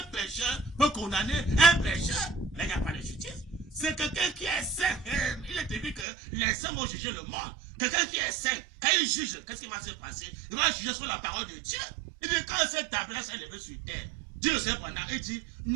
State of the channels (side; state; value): left; drops out; at 6.1 s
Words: pécheur peut condamner un pécheur? Là, il n'y a pas de justice. C'est quelqu'un qui est saint. Il est dit que les saints vont juger le monde. Quelqu'un qui est saint, quand il juge, qu'est-ce qui va se passer? Il va juger sur la parole de Dieu. Il dit quand cette tabernacle s'est élevée sur terre, Dieu le Seigneur pendant, il dit, il ne